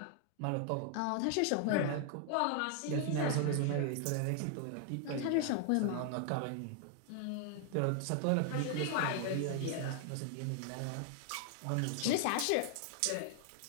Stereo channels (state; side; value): different; both; correlation 0.00